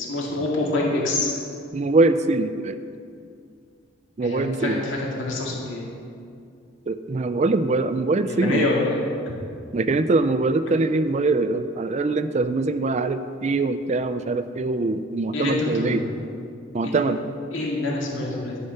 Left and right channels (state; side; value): normal; both; correlation 0.45